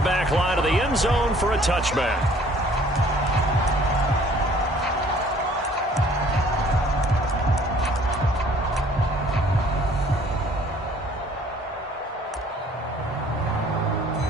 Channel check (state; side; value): normal; both; correlation 0.56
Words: line of the end zone for a touchback.